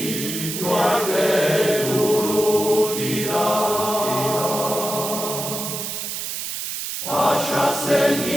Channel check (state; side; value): noise; right; hiss, 5 dB below the sound